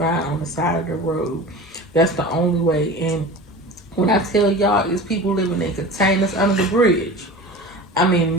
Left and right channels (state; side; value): normal; both; correlation 0.35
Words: on the side of the road. That's the only way. And when I tell y'all, it's people living in containers under the bridge. I